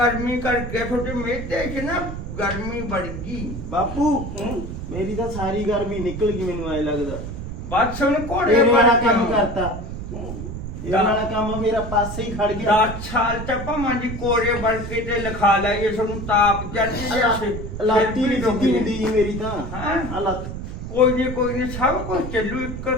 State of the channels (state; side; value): noise; right; rumble, 7 dB below the sound